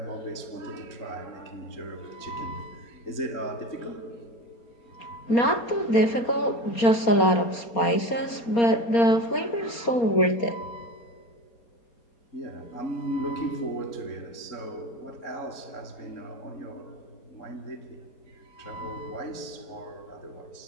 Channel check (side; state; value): right; late; 4.3 ms